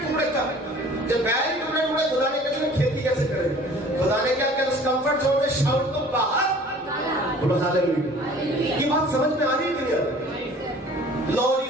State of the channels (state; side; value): normal; both; correlation 0.49